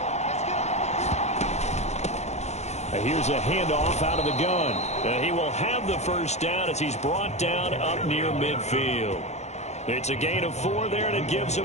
And here's a handoff out of the gun. And he will have the first down as he's brought down up near midfield. It's a gain of 4 there, and it gives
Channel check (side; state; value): right; late; 0.32 ms